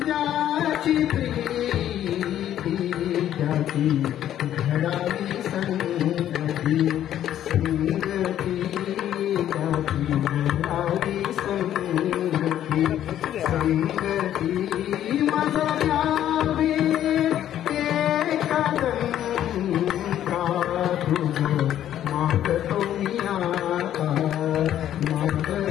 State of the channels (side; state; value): right; quieter; 11.3 dB